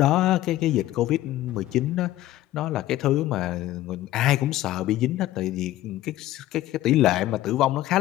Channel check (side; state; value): right; quieter; 15.0 dB